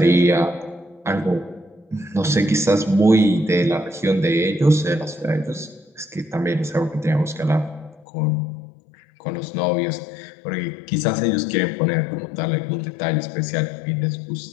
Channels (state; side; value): drops out; right; at 8.1 s